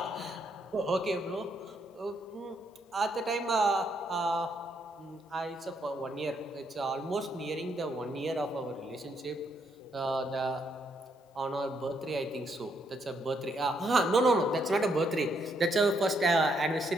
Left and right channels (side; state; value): both; normal; correlation 0.74